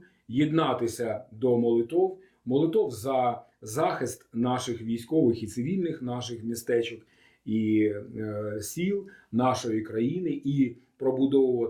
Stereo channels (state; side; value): identical; both; correlation 1.00